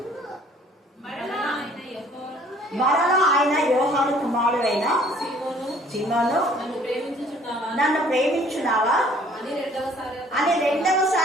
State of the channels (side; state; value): both; normal; correlation 0.56